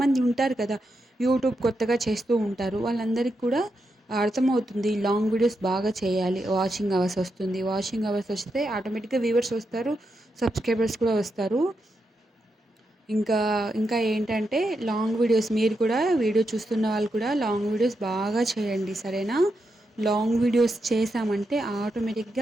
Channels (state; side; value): normal; both; correlation 0.85